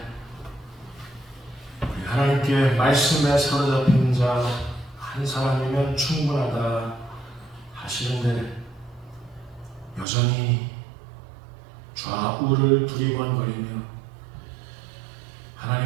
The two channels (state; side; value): drops out; left; at 10.1 s